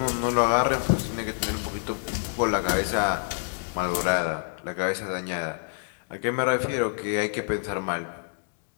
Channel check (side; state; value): right; silent; digital silence